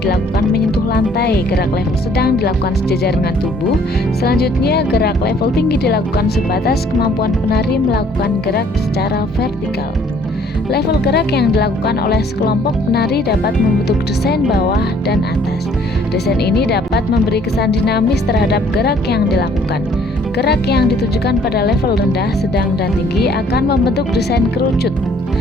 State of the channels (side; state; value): both; normal; correlation 0.60